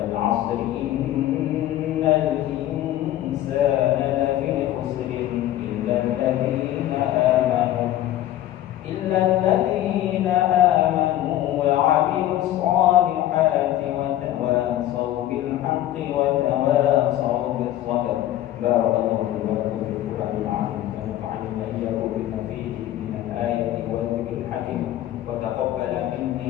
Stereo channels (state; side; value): quieter; right; 13.3 dB